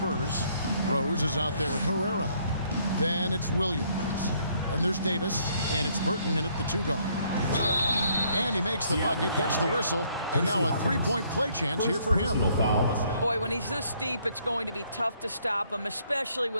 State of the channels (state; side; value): inverted; both; correlation -0.67